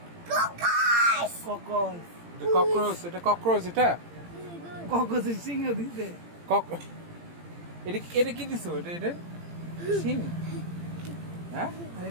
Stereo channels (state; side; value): late; left; 18 ms